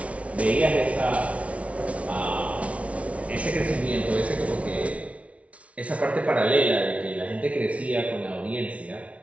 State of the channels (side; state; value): left; late; 0.064 ms